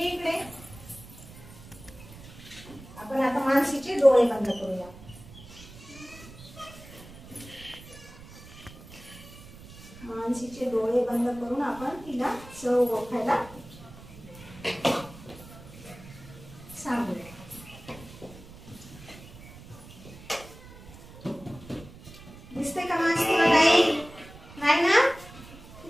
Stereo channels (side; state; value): right; noise; rumble, 18 dB below the sound